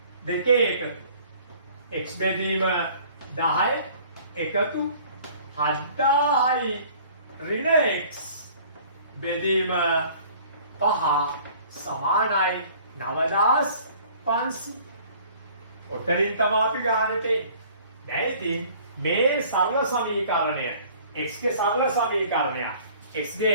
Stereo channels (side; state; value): both; inverted; correlation -0.52